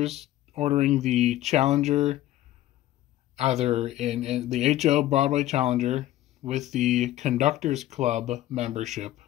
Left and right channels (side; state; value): right; quieter; 14.4 dB